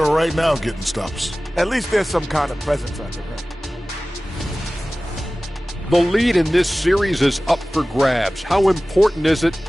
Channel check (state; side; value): normal; both; correlation 0.97